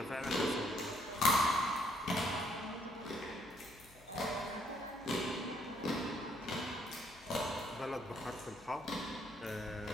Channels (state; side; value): normal; both; correlation 0.69